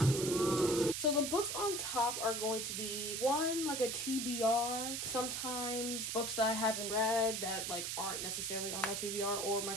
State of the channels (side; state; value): right; noise; hiss, 3 dB below the sound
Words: on top are going to be one, like a TBR, sometimes books that I haven't read that like aren't necessarily on my TBR or my